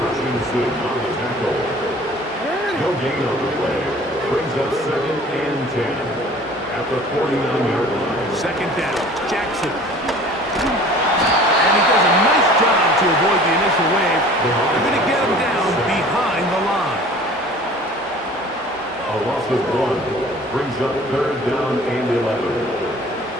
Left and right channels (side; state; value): both; normal; correlation 0.47